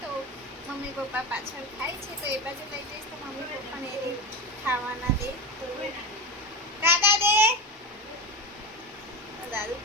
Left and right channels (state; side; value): normal; both; correlation 0.20